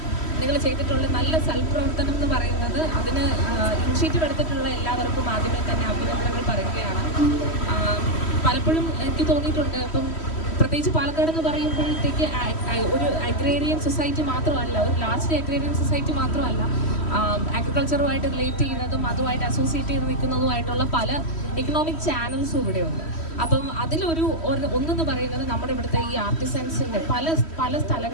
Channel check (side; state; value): right; late; 3.1 ms